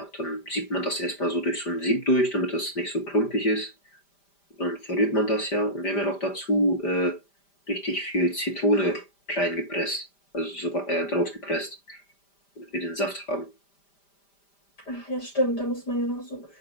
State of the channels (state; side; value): late; right; 5.0 ms